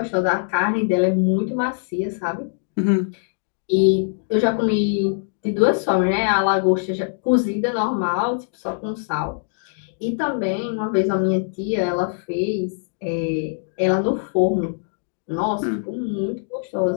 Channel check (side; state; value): right; silent; digital silence